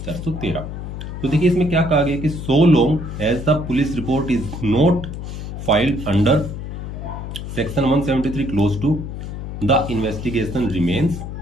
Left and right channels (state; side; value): noise; left; hum, 7 dB below the sound